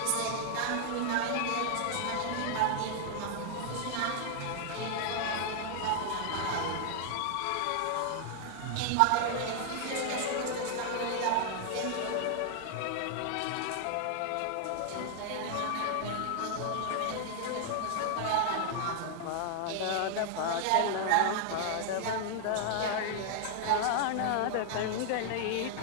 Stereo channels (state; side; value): different; both; correlation 0.00